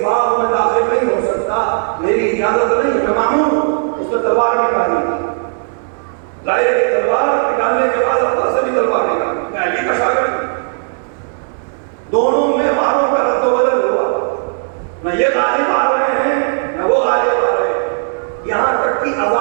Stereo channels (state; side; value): silent; left; digital silence